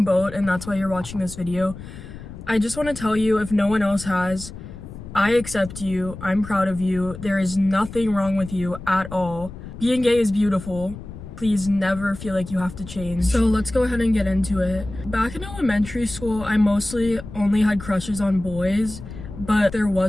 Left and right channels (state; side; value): noise; left; rumble, 13 dB below the sound